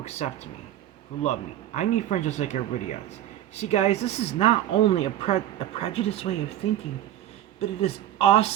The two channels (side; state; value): left; quieter; 12.3 dB